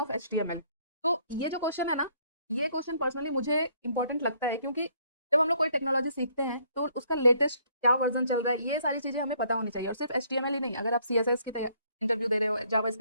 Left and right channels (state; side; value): inverted; both; correlation -0.66